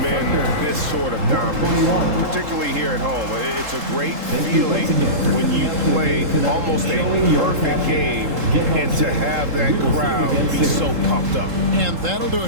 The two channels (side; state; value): left; late; 3.7 ms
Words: this sort of dominance, particularly here at home. It's a great feeling when you play almost a perfect game and to have that crowd be so pumped up. And that'll do